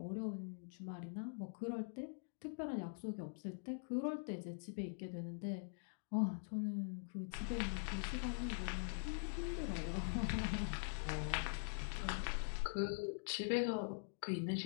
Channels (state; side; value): silent; right; digital silence